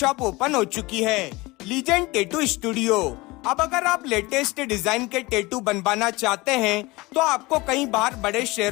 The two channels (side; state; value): right; quieter; 22.3 dB